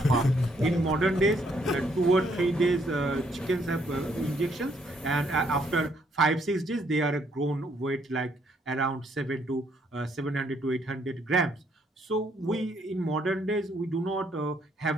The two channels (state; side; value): normal; both; correlation 0.70